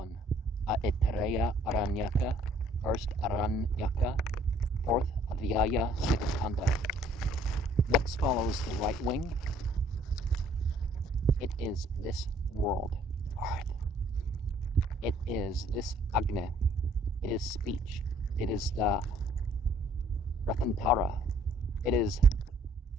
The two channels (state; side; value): normal; both; correlation 0.60